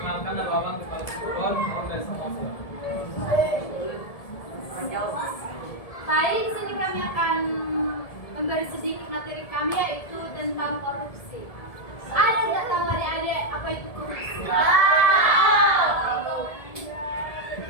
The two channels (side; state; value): right; late; 1.7 ms